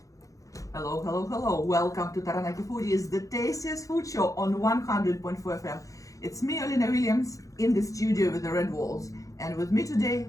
Hello, hello, hello. Welcome to Taranaki Foodies, the tastiest food show on 100.4 FM. It's me, Olina Williams, in the studio with the red walls. And with me today,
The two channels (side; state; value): right; late; 0.16 ms